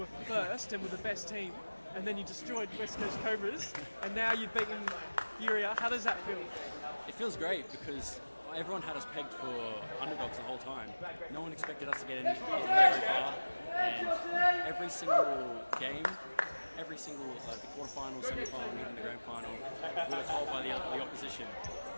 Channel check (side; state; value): both; inverted; correlation -1.00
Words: were first and were the best team, and then you destroyed West Coast Cobras, and now you've beaten Furia. How does that feel? It feels great because everyone had us pegged for underdogs the whole time. No one expected us to get very far, and every single game, every single the quarterfinal, semi-final, even the grand final, we were told by the opposition,